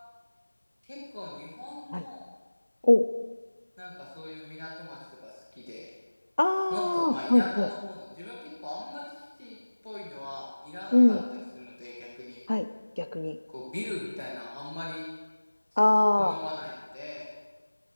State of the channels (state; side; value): inverted; both; correlation -1.00